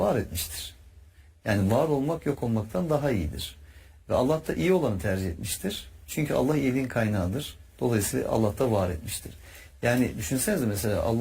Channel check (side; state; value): both; identical; correlation 1.00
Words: etmiştir. Yani var olmak yok olmaktan daha iyidir. Ve Allah da iyi olanı tercih etmiştir. Çünkü Allah iyiliğin kaynağıdır. Dolayısıyla Allah da var etmiştir. Yani düşünsenize mesela